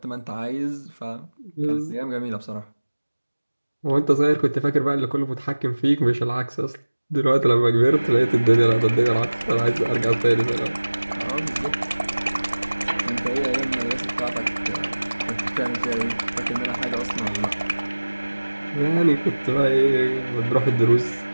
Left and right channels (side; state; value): both; inverted; correlation -1.00